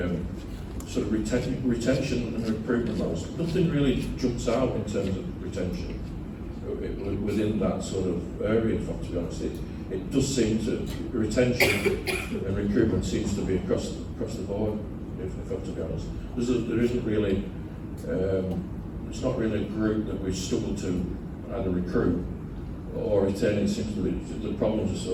sort of retention and recruitment levels. Nothing really jumps out in terms of retention within that sort of area. To be honest, it does seem to retention and recruitment seems to be across the board. If I'm to be honest, there isn't really. It's not really a group that we've struggled to either recruit or retain. It seems to be the problems are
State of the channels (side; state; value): both; identical; correlation 1.00